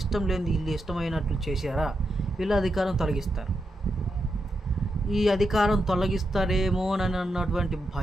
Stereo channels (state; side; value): normal; both; correlation 0.85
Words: లేనిది వీళ్ళు ఇష్టమైనట్లు చేశారా, వీళ్ళు అధికారం తొలగిస్తారు. ఈ అధికారం తొలగిస్తారేమో అని అన్నటువంటి